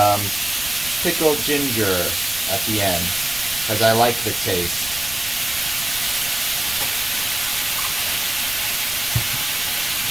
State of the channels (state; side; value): noise; right; rumble, 15 dB below the sound